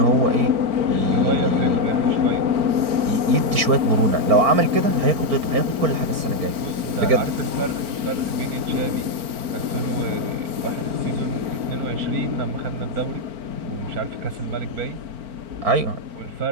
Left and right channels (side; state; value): left; late; 4.4 ms